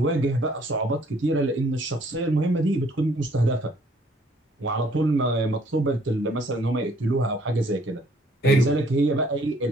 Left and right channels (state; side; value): normal; both; correlation 0.62